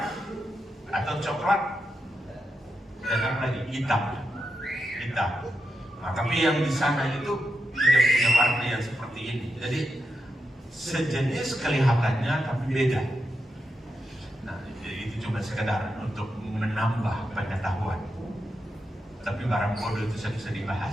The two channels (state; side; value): normal; both; correlation 0.86